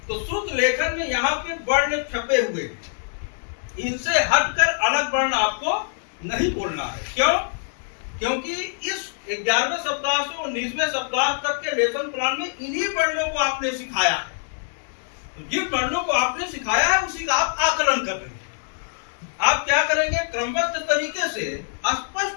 तो श्रुत लेखन में यहाँ पे वर्ण छपे हुए, इनसे हटकर अलग वर्ण आपको नहीं बोलना है। क्यों? क्योंकि इस 11वें सप्ताह से 19वें सप्ताह तक के लेसन प्लान में इन्हीं वर्णों को आपने सिखाया है। तो जिन वर्णों को आपने सिखाया है उसी का आप आकलन कर रहे हैं। आप क्या करेंगे? क्रमबद्ध तरीके से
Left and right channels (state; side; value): silent; right; digital silence